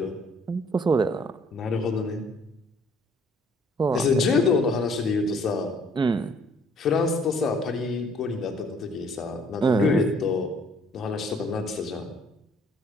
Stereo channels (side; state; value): both; normal; correlation 0.60